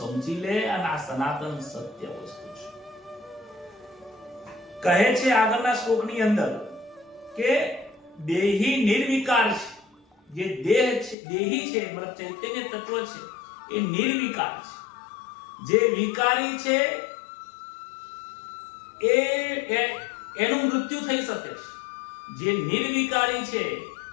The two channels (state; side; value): drops out; right; at 11.2 s